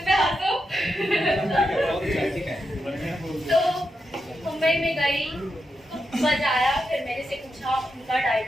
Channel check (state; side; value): normal; both; correlation 0.86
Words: पे हंसो। तो मुंबई में गई, बजाया, फिर मेरे से पूछा, उनका